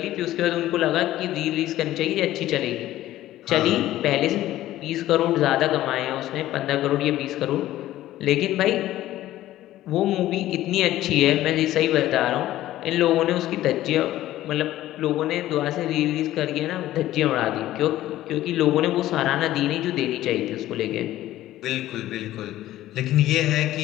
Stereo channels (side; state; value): right; quieter; 14.5 dB